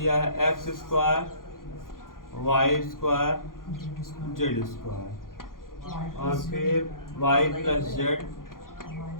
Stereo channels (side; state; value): right; late; 0.91 ms